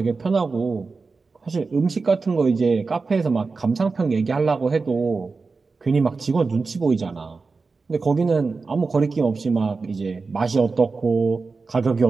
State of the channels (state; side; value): quieter; left; 4.3 dB